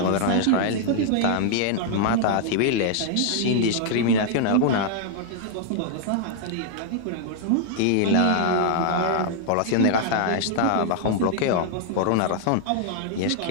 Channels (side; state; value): both; different; correlation 0.00